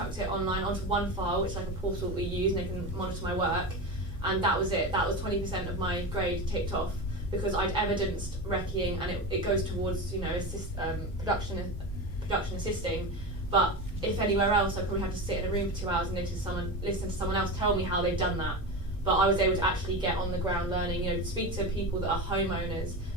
it online onto one file, which is like a portal we use, and they can monitor my work, and that was it. That was 20% of my grade ticked off, because I'd evidenced recceing, and it goes towards, you know, production assisting. But if anywhere else, I'd probably have to sit in a room for 2 hours and listen to someone else tell me how they've done that. But I was able to actually get on the ground learning, you know, speak to people that are homeowners,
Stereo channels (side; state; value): both; normal; correlation 0.23